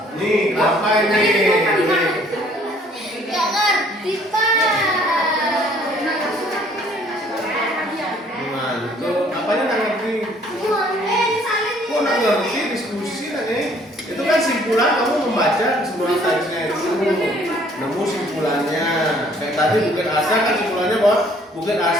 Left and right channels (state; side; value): normal; both; correlation 0.59